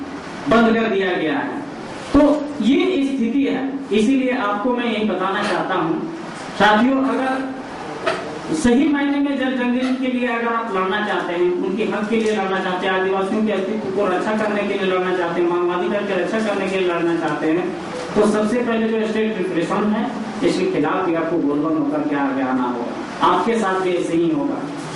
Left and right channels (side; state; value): both; identical; correlation 1.00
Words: बंद कर दिया गया है। तो ये स्थिति है। इसीलिए आपको मैं यही बताना चाहता हूँ साथियों, अगर सही मायने में जल जंगल के लिए अगर आप लड़ना चाहते हैं, उनके हक के लिए लड़ना चाहते हैं, आदिवासियों के अस्तित्व को रक्षा करने के लिए लड़ना चाहते हैं, मानवाधिकार की रक्षा करने के लिए लड़ना चाहते हैं, तो सबसे पहले जो स्टेट रिप्रेशन है इसके खिलाफ भी आपको बोलबम होकर के आगे आना होगा। आपके साथ भी ऐसे ही होगा।